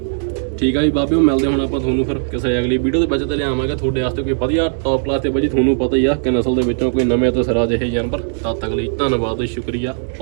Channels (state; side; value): silent; left; 62 dB below the other